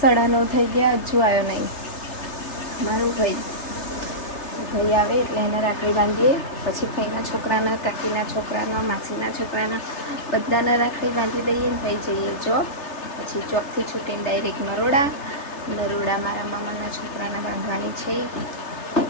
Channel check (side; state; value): right; late; 3.3 ms